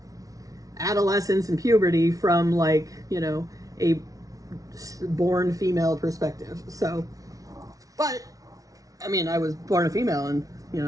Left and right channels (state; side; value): late; left; 0.17 ms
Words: adolescence and puberty from, like, a born female perspective. So, but, I mean, I was born a female and,